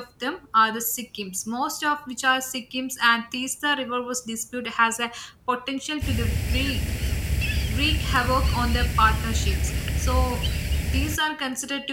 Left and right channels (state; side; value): identical; both; correlation 1.00